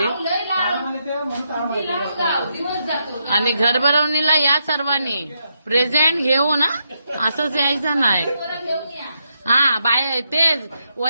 आणि घर भरवणीला या सर्वांनी प्रेझेंट घेऊ ना, असंच यायचं नाही। हा बाय तेच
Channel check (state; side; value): inverted; both; correlation -0.81